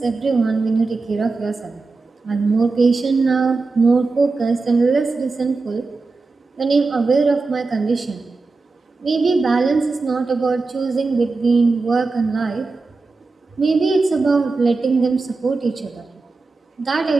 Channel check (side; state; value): left; quieter; 3.9 dB